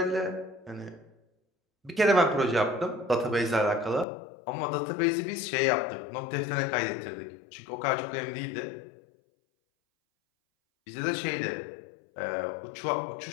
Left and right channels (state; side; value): drops out; right; at 4.0 s